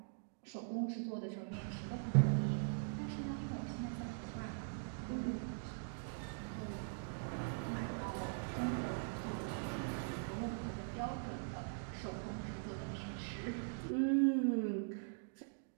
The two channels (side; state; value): left; silent; digital silence